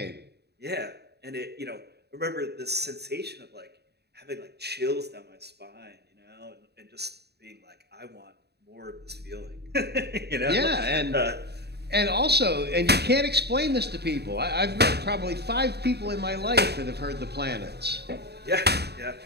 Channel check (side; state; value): left; late; 0.48 ms